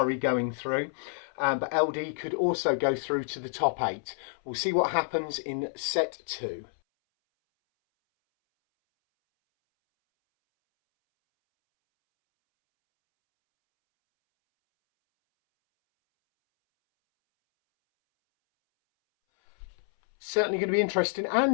going through, but LD could also go through to the top 8. We'll see what happens in set 2. Certainly going to be interesting,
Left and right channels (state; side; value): silent; right; 59 dB below the other